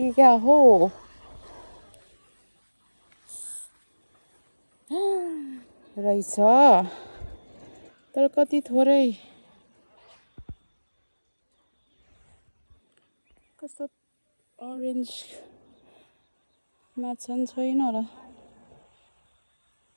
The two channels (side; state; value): both; inverted; correlation -1.00